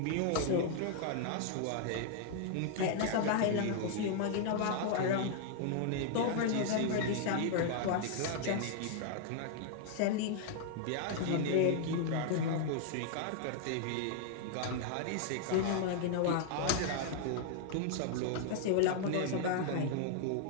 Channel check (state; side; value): different; both; correlation -0.01